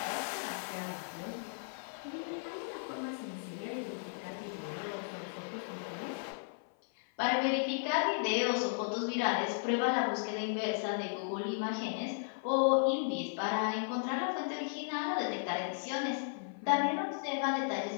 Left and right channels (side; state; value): right; silent; 54 dB below the other